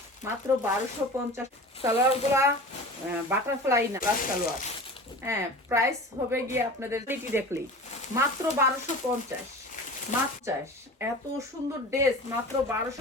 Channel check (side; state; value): both; normal; correlation 0.36